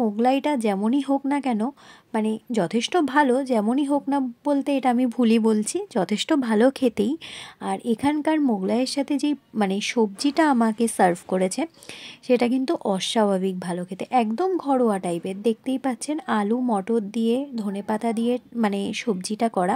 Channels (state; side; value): identical; both; correlation 1.00